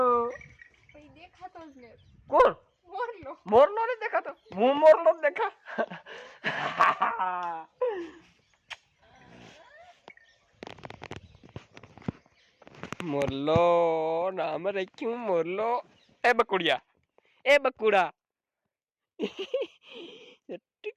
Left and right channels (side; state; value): both; identical; correlation 1.00